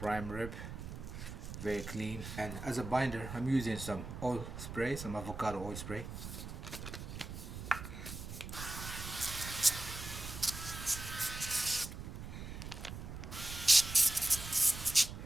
rib, very clean. And as a binder, I'm using some oil spray, some avocado oil spray.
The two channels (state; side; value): noise; right; rumble, 9 dB below the sound